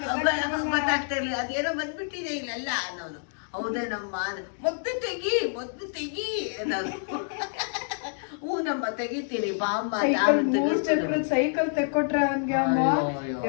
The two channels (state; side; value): silent; right; digital silence